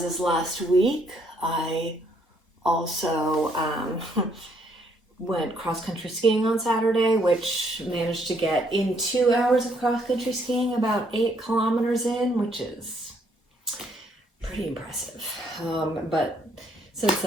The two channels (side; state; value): both; normal; correlation 0.69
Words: last week, I also went cross-country skiing on Saturday, which managed to get in 2 hours of cross-country skiing, about 8 kilometers in, which is pretty impressive. But since